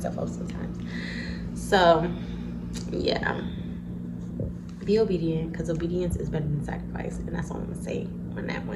up sometimes. So yeah, be obedient, because obedience is better than sacrifice, and that's all I'm gonna say on that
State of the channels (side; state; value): both; identical; correlation 1.00